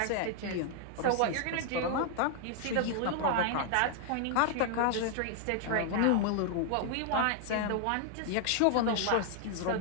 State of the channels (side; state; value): both; different; correlation 0.00